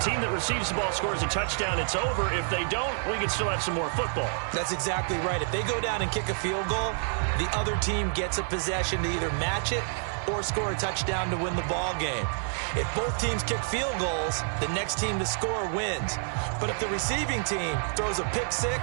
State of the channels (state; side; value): silent; left; 58 dB below the other